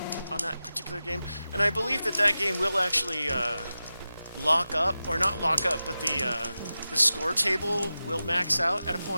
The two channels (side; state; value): both; inverted; correlation -0.94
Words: on that particular game. And I believe that game will actually lock up, or not lock up, but the score table will max out at a